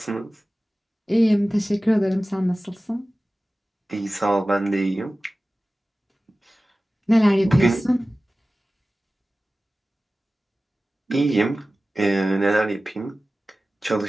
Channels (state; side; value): normal; both; correlation 0.96